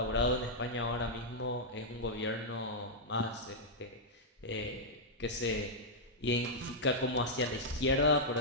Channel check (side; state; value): both; normal; correlation -0.06